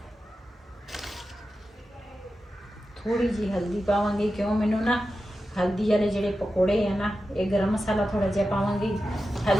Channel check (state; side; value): normal; both; correlation 0.91